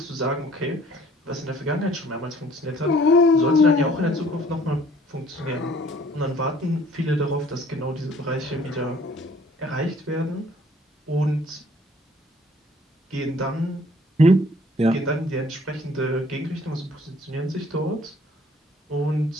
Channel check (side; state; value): both; normal; correlation 0.57